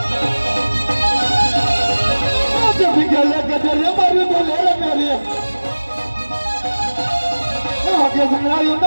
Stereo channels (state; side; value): inverted; both; correlation -1.00